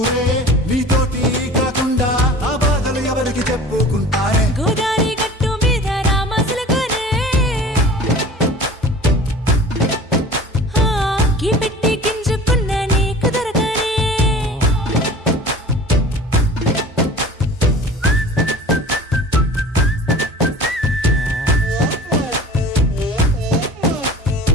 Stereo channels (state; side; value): normal; both; correlation 0.42